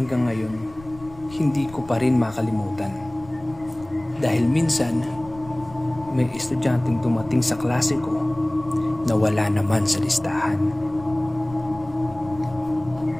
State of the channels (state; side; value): noise; left; rumble, 20 dB below the sound